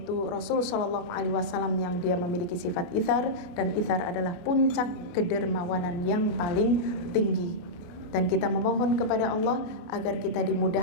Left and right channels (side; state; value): right; late; 28 ms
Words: Rasul Shallallahu Alaihi Wasallam yang dia memiliki sifat ithar, dan ithar adalah puncak kedermawanan yang paling tinggi. Dan kita memohon kepada Allah agar kita